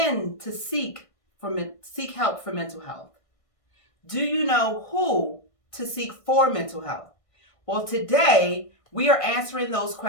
to seek help for mental health? Do you know who to seek for mental health? Well, today we are answering those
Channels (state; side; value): late; right; 1.6 ms